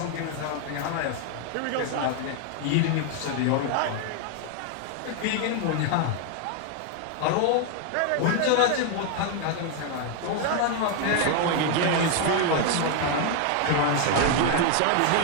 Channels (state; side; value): different; both; correlation 0.01